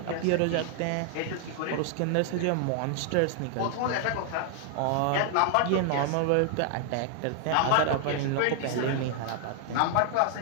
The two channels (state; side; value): different; both; correlation 0.00